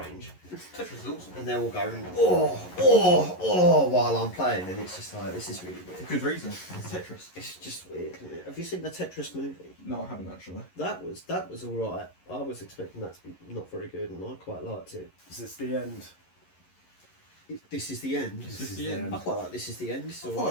strange. Tetris is awesome. And they're all going, oh, while I'm playing, and it's just like, this is really weird. Good reason. It's Tetris. It's just weird, isn't it? Have you seen the Tetris movie? No, I haven't actually. That was alright. I was expecting that to be not very good, and I quite liked it. is this the end? This is the end. This is the end. I quite like This Is the End. It's I thought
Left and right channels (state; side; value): late; right; 11 ms